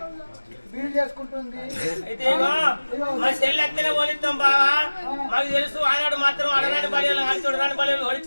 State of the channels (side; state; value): both; inverted; correlation -1.00